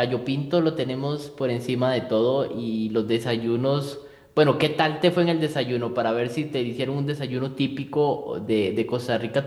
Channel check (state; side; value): identical; both; correlation 1.00